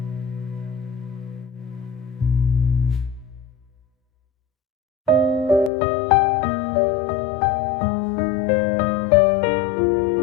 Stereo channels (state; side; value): drops out; right; at 5.7 s